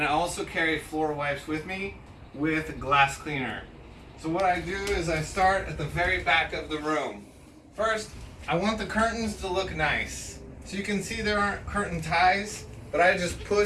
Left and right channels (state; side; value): identical; both; correlation 1.00